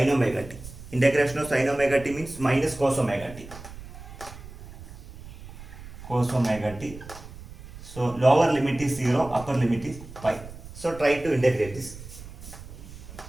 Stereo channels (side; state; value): right; noise; rumble, 15 dB below the sound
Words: omega t? Integration of sin omega t means minus cos omega t. Cos omega t. So lower limit is 0, upper limit is pi. So try to integrate this.